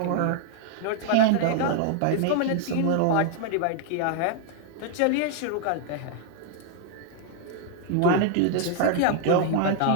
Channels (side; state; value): both; different; correlation 0.00